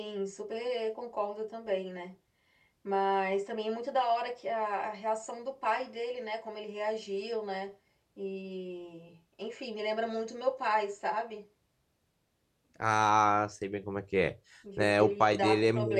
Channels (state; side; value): identical; both; correlation 1.00